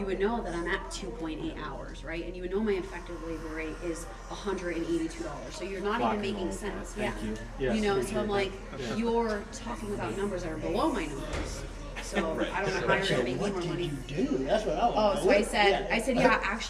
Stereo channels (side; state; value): both; identical; correlation 1.00